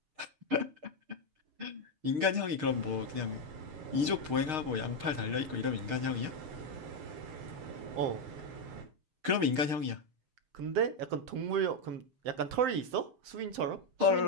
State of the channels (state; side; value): late; left; 6.5 ms